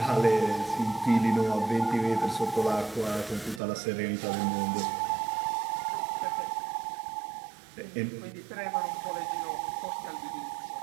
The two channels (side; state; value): left; drops out; at 3.6 s